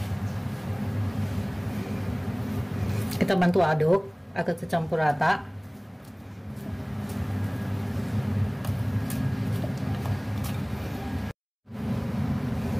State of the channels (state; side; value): identical; both; correlation 1.00